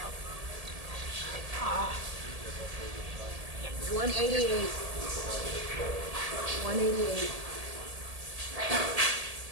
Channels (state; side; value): late; left; 1.8 ms